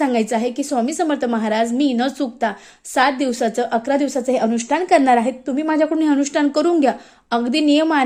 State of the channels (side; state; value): both; identical; correlation 1.00